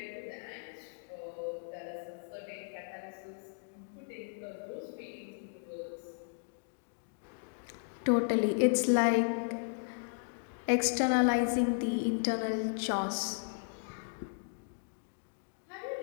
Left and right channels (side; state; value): right; silent; digital silence